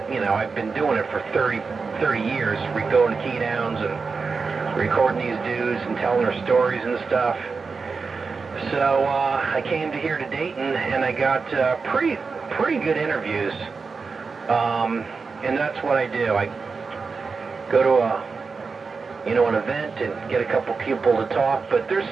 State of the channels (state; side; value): quieter; left; 4.7 dB